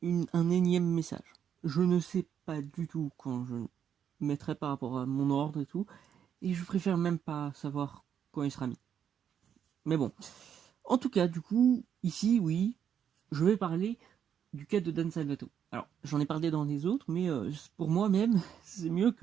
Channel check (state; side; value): quieter; left; 8.5 dB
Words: un énième message. Je ne sais pas du tout quand je mettrai par rapport à mon ordre et tout, et je préfère même pas savoir quand il sera mis. Mais bon, en tout cas, du coup, ici, oui, je vais parler du cas de Dan Salvato. Alors, j'en ai parlé dans les autres, mais pour moi-même, c'est mieux